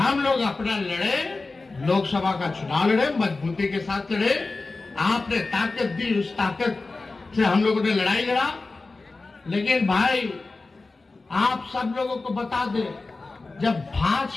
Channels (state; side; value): quieter; right; 3.6 dB